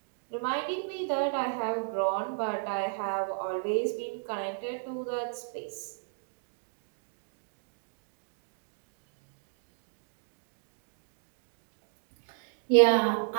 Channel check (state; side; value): silent; left; 55 dB below the other